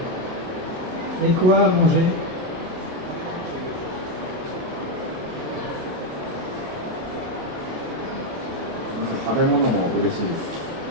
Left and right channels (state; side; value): late; left; 27 ms